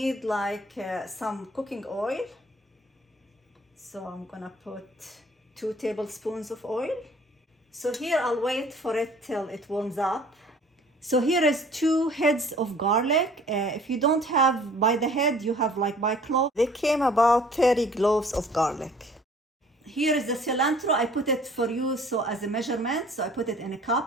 like some cooking oil. So I'm gonna put 2 tablespoons of oil. So here I'll wait for it till it warms up. So here is 2 heads of garlic. If you don't have by the head, you have like by clove. They came about 30 cloves of garlic. Here is the cilantro. I put it for you so as a measurement. So I put it in a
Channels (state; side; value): normal; both; correlation 0.52